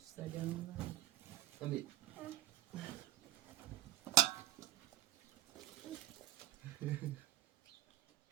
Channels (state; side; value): quieter; left; 13.0 dB